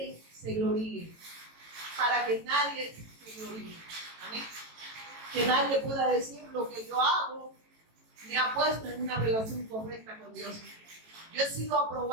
se gloríe. Para que nadie se gloríe. Amén. Que nadie pueda decir lo que yo hago me ha puesto en una relación correcta con Dios. Yo he sido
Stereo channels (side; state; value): left; late; 18 ms